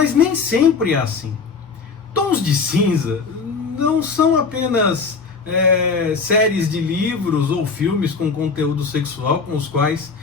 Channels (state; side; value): quieter; right; 4.9 dB